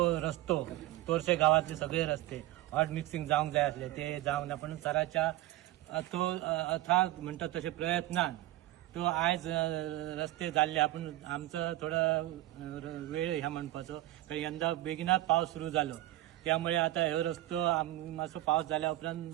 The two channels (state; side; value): quieter; left; 16.0 dB